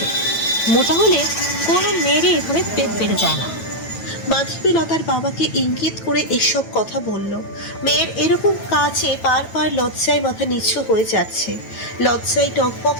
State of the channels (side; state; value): right; late; 9.1 ms